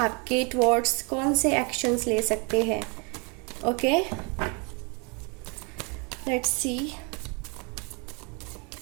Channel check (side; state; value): left; quieter; 32.3 dB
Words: टुवर्ड्स कौन से एक्शंस ले सकते हैं। Okay, let's see.